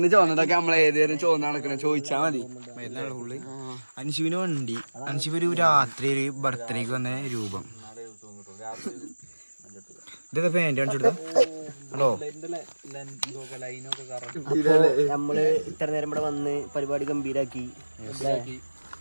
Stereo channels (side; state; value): both; inverted; correlation -1.00